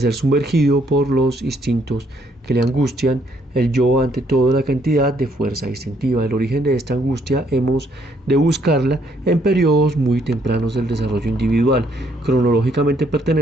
sumergido por los instintos que le angustian, el yo ante todo la cantidad de fuerza instintiva. El origen de esta angustia hemos de buscarla en periodos muy tempranos del desarrollo individual. Cronológicamente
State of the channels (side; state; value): both; normal; correlation 0.69